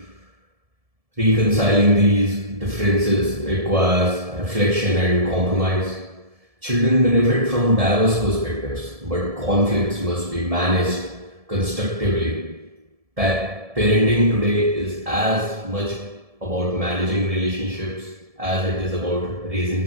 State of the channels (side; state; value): left; late; 1.7 ms